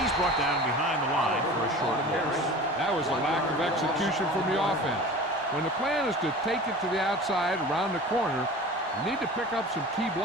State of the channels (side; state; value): both; normal; correlation 0.38